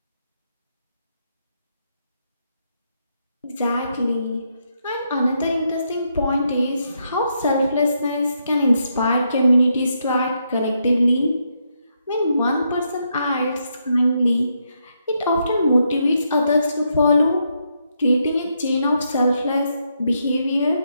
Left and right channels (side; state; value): both; inverted; correlation -0.79